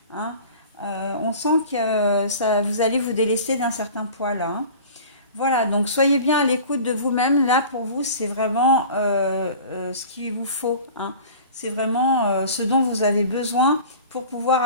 hein. On sent que ça, vous allez vous délaisser d'un certain poids là, hein. Voilà, donc soyez bien à l'écoute de vous-même. Là, pour vous, c'est vraiment ce qu'il vous faut, hein. C'est vraiment ce dont vous avez besoin pour pouvoir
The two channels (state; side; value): inverted; both; correlation -0.41